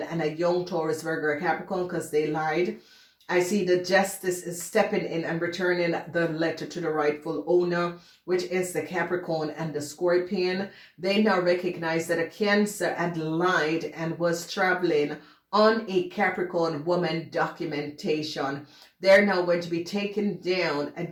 and a young Taurus, Virgo, or Capricorn because they lied. I see the justice is stepping in and returning the letter to the rightful owner, which is the Capricorn and the Scorpion. They now recognize that a Cancer had lied and was traveling on a Capricorn woman documentation. They're now going to be taking down a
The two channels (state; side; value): identical; both; correlation 1.00